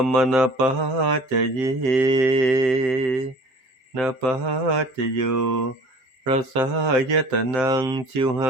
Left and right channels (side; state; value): left; late; 7.7 ms